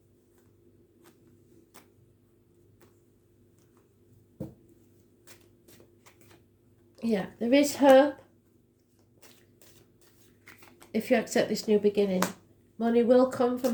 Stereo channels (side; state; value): both; identical; correlation 1.00